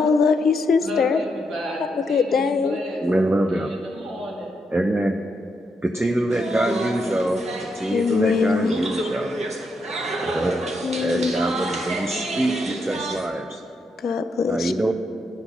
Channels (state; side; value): normal; both; correlation 0.80